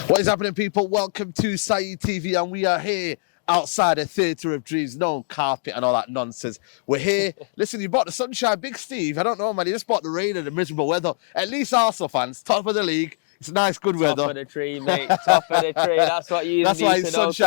What is happening, people? Welcome to Saeed TV, and we are here outside the Theatre of Dreams. No carpet and all that nonsense. We're here. Listen, you bought the sunshine, Big Steve. I don't know, man. You just bought the rain and the miserable weather. At least Arsenal fans, top of the league. It's nice, good weather. Top of the tree, mate. Top of the tree. That's what you That's need why to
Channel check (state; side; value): silent; right; digital silence